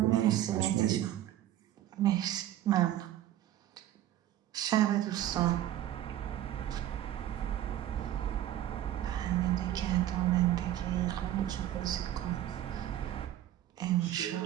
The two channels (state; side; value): quieter; left; 12.6 dB